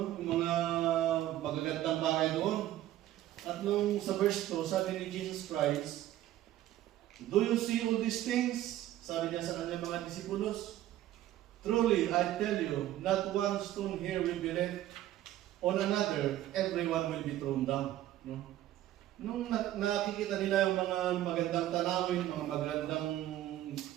Yung mga magagandang bahay doon. At nung sa verse 2, sabi ni Jesus Christ, "Do you see all these things?" Sabi niya sa kanyang mga disipulos, "Truly, I tell you, not one stone here will be left on another, everyone will be thrown down." No? Nung nakikita nila yung mga magandang tanawin, mga magandang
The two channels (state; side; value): quieter; left; 13.7 dB